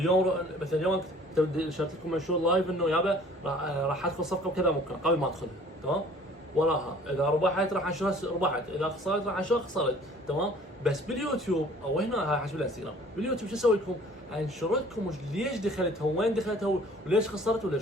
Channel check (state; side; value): normal; both; correlation 0.52